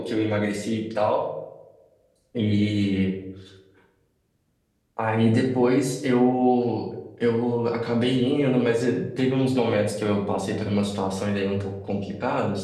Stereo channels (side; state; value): both; identical; correlation 1.00